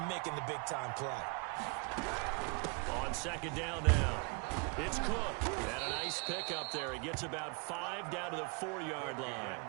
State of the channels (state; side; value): quieter; left; 32.2 dB